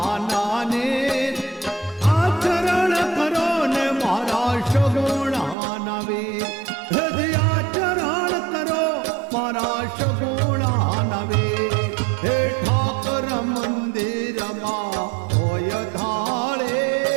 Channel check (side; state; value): left; drops out; at 5.6 s